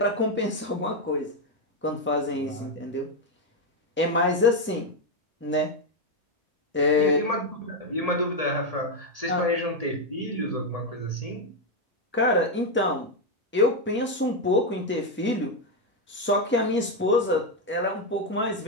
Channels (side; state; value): both; normal; correlation 0.05